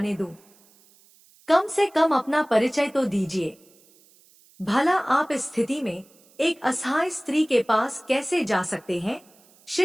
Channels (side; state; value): right; noise; hiss, 29 dB below the sound